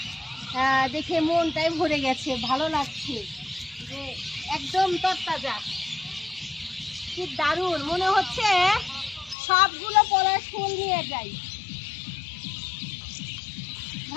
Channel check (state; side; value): drops out; right; at 9.3 s